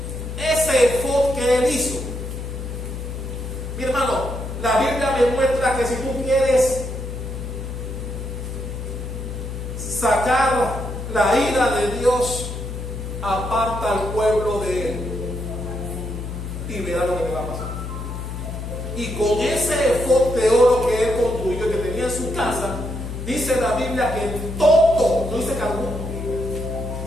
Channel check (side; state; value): left; noise; hum, 7 dB below the sound